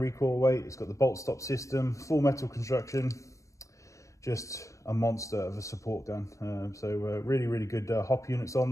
recoil weight. It's got the bolt stop system, full metal construction, just a monster of a support gun. Really good hop units on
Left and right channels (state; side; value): late; right; 0.15 ms